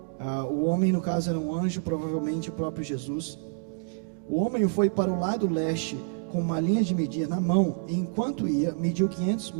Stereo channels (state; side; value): silent; left; 60 dB below the other